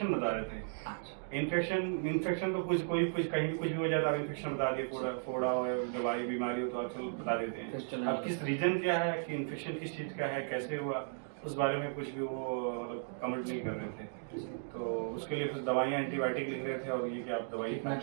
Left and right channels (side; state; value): left; silent; digital silence